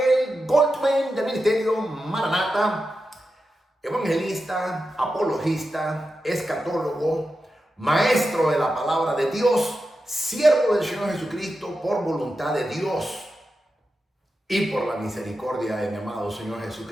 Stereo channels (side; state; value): both; normal; correlation 0.90